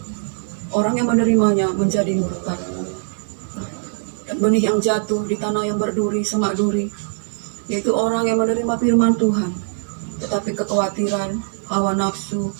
orang yang menerimanya menjadi murtad. Benih yang jatuh di tanah yang berduri, semak duri, yaitu orang yang menerima firman Tuhan, tetapi kekhawatiran, hawa nafsu,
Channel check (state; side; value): silent; left; digital silence